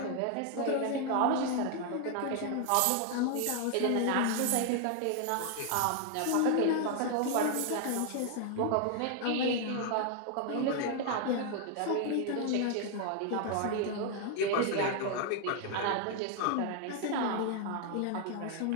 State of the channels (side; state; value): both; different; correlation 0.00